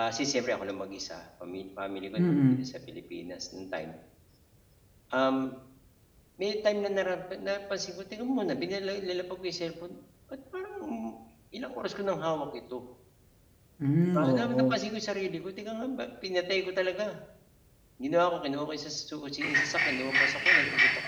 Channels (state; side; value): identical; both; correlation 1.00